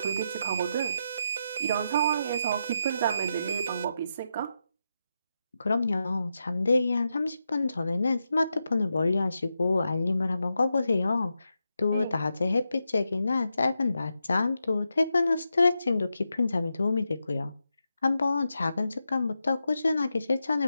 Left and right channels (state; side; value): inverted; both; correlation -0.86